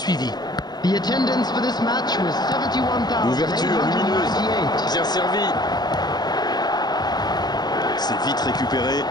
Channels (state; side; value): late; right; 0.20 ms